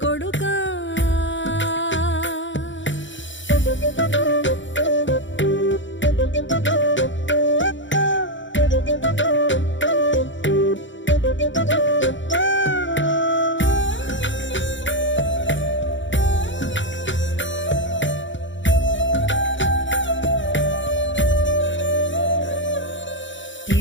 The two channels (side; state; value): right; late; 0.55 ms